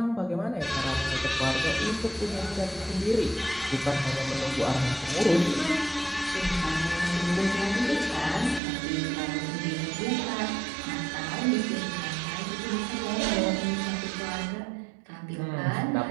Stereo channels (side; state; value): left; drops out; at 8.6 s